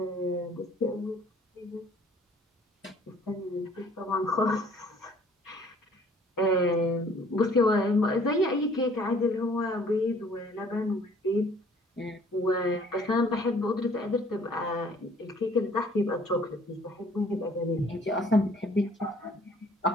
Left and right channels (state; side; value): normal; both; correlation 0.57